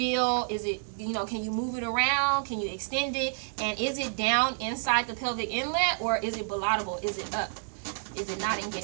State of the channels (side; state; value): left; silent; digital silence